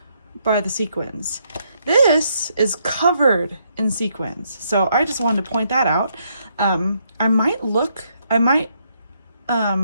by the sequins. This is covered in sequins. So I just wanted to point that out.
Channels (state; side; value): inverted; both; correlation -0.74